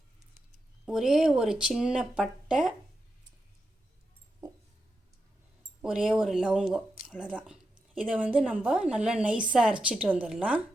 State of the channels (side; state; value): both; normal; correlation 0.87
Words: ஒரே ஒரு சின்ன பட்டை, ஒரே ஒரு லவங்கம், அவ்வளோதான். இதை நம்ம நல்லா நைஸாக அரைச்சிட்டு வந்துடலாம்.